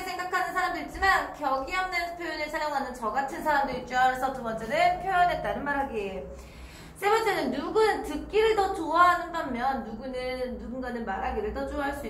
생각하는 사람도 있지만 격이 없는 표현을 사용하는 저 같은 사람도 있죠. 그래서 두 번째는 표현에 따른 말하기. 세 번째는 누구는 듣기를 더 좋아하는 반면 누군가는 말하기를 더 좋아할 수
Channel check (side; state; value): both; identical; correlation 1.00